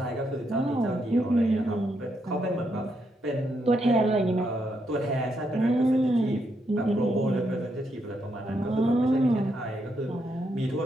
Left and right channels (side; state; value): both; normal; correlation 0.79